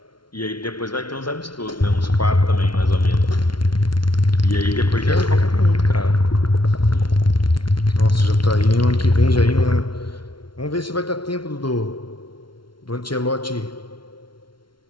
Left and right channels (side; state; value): right; late; 0.73 ms